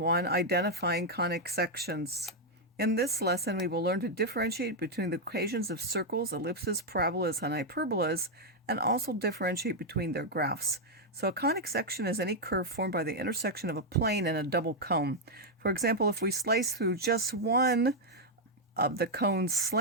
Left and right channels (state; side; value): normal; both; correlation -0.01